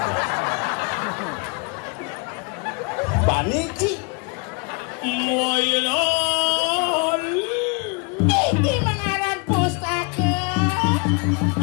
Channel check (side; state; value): right; quieter; 32.3 dB